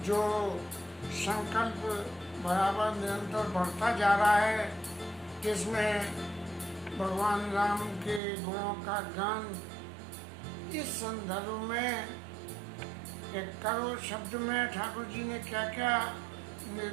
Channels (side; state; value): left; drops out; at 8.2 s